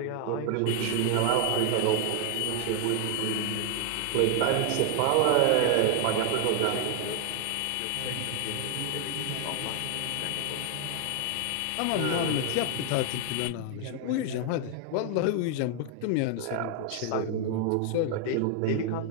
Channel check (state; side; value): different; both; correlation 0.00